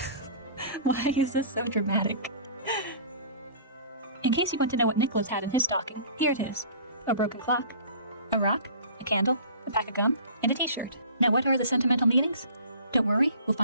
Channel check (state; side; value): inverted; both; correlation -0.44